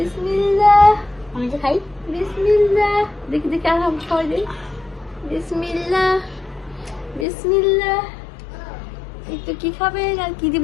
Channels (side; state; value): right; drops out; at 7.2 s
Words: আমি তো খাই। বিসমিল্লাহ। দেখি দেখি আর হাম খাওয়াই দিই। বিসমিল্লাহ বিসমিল্লাহ। একটু কি খাবেন আর কি দিব?